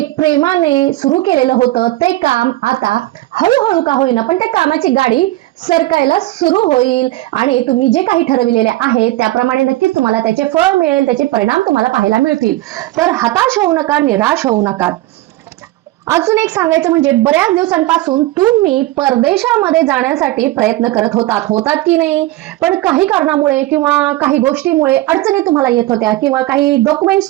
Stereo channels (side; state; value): left; quieter; 17.6 dB